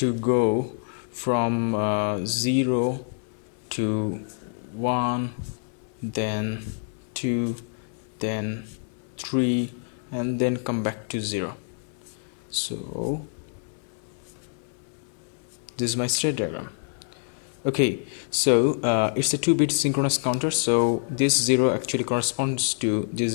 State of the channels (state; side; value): silent; right; 57 dB below the other